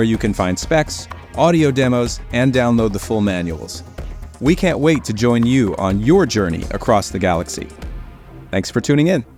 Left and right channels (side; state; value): both; identical; correlation 1.00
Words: you can find specs, audio demos, and download the full manuals. We can't wait to join you on your journey across the galaxy. Thanks for tuning in.